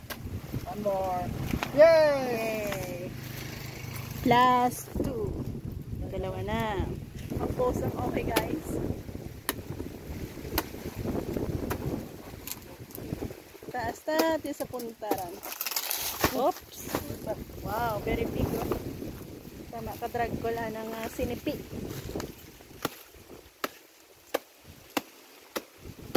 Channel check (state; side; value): identical; both; correlation 1.00